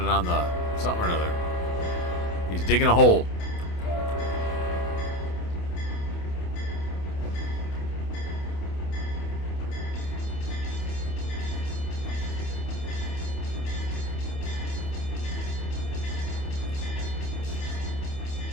on the something or another. He's digging a hole.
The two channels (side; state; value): right; late; 28 ms